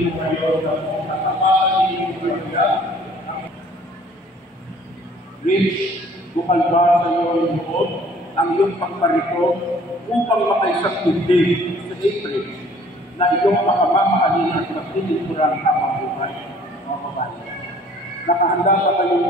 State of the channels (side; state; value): both; normal; correlation 0.55